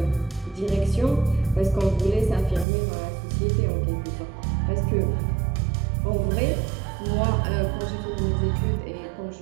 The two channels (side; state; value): left; drops out; at 2.7 s